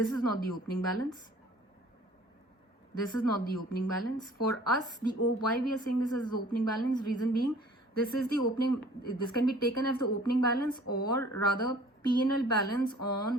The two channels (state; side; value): normal; both; correlation 0.51